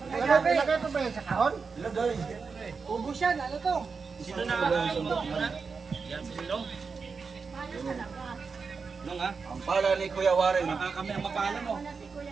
Ilagay ito ba yan sa kahon? ilagay. Ubus yan, ano to? Sino na? Yan si Silong. Nung ha? Ang pala ni Kuya Warren. Baka kami ang mapala mo.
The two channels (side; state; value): left; quieter; 5.1 dB